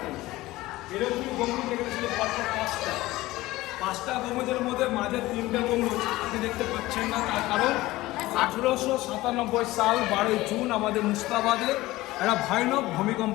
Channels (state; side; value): quieter; right; 18.2 dB